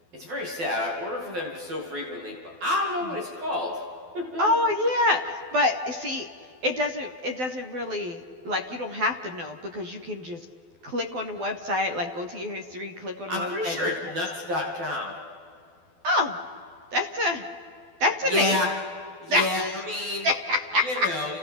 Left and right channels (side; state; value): left; late; 12 ms